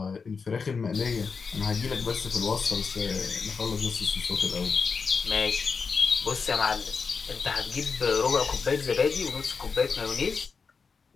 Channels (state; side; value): quieter; right; 5.2 dB